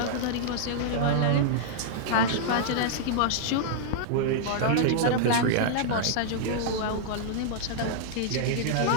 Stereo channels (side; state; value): both; different; correlation -0.01